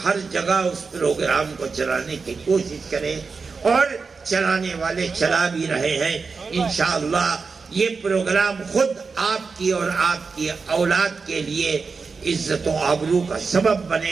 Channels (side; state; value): left; quieter; 4.8 dB